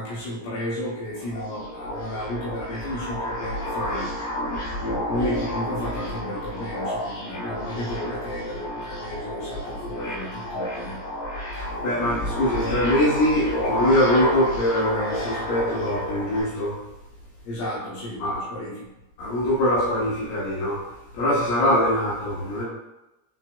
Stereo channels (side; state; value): right; late; 17 ms